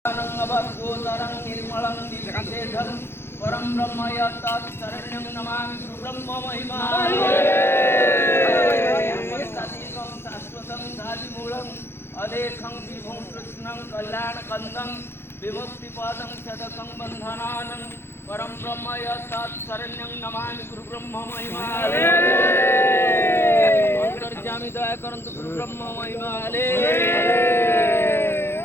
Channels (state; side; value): late; right; 0.11 ms